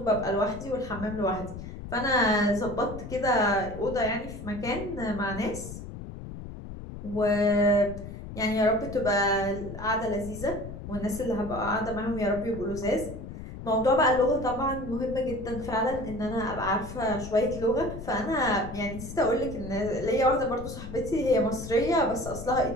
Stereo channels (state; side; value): noise; left; rumble, 10 dB below the sound